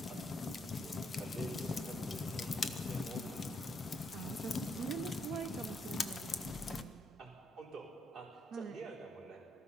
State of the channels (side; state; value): both; normal; correlation 0.76